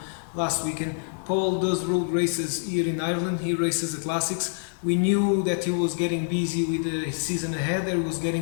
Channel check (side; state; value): right; silent; 61 dB below the other